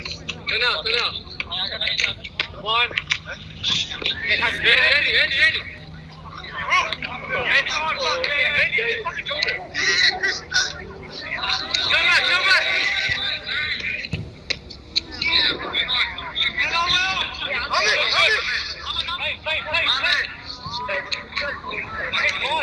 Go now. One. Ready.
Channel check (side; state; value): both; identical; correlation 1.00